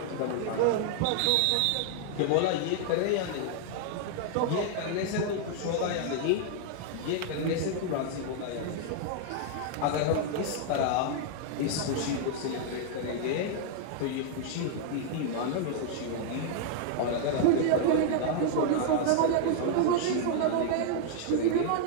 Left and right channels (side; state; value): both; different; correlation -0.01